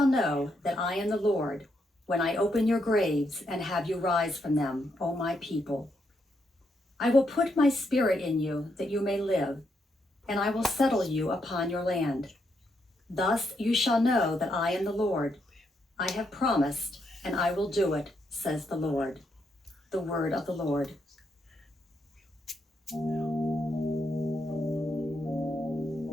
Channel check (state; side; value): normal; both; correlation 0.79